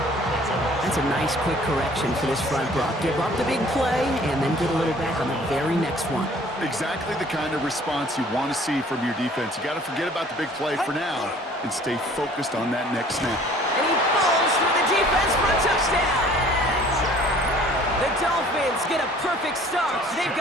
That's a nice quick correction for this front, Brock. Give up the big play and then get a little back on the very next one. Exactly the kind of response you want to see from your defense. You got to forget about the big play for now and stay focused on that next snap. And he falls through the defense for a touchdown. The Dolphins get a perfect start. They've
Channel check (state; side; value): normal; both; correlation 0.53